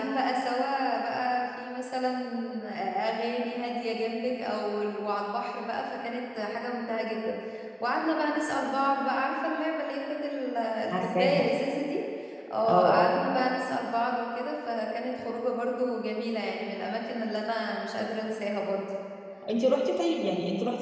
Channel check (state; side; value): identical; both; correlation 1.00